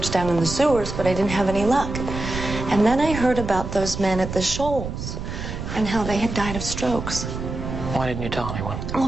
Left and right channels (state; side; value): noise; right; rumble, 6 dB below the sound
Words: down in the sewers, but I didn't have any luck. And then I heard about those men at the Shoals and how they had died of strokes. Why didn't you tell anyone? Well,